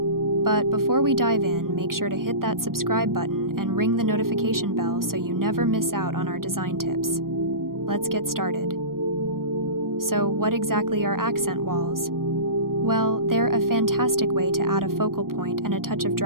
But before we dive in, make sure to hit that subscribe button and ring the notification bell so you never miss out on our design tips. Let's get started. So, what exactly are accent walls? Well, they're a fantastic way to add a focal point and a touch of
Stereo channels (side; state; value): left; late; 0.91 ms